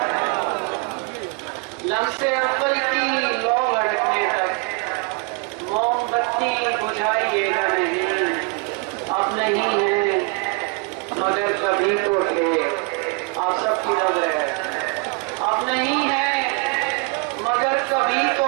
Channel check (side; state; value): left; quieter; 30.7 dB